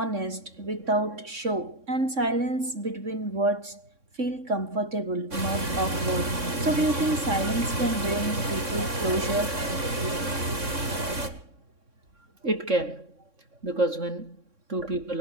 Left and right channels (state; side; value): late; left; 3.6 ms